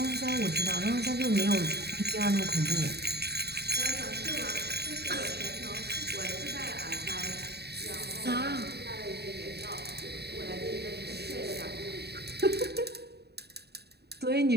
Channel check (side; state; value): left; late; 0.48 ms